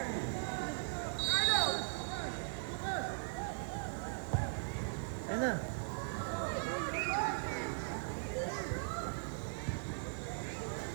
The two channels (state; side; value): silent; left; digital silence